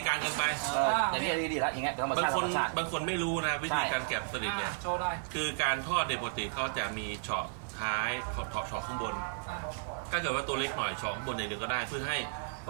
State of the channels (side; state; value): left; silent; 56 dB below the other